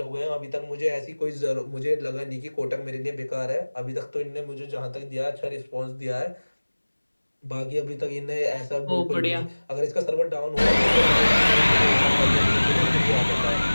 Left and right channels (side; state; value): both; inverted; correlation -1.00